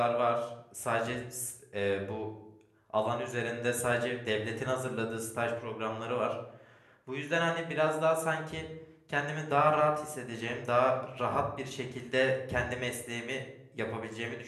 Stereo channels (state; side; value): identical; both; correlation 1.00